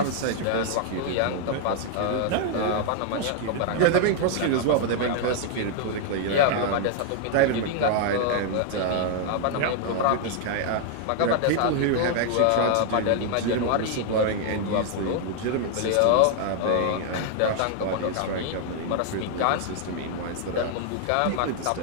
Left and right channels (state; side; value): different; both; correlation 0.00